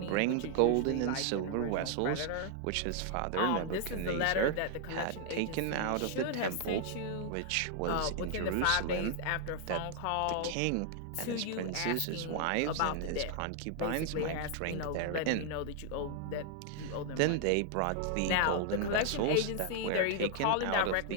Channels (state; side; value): different; both; correlation 0.00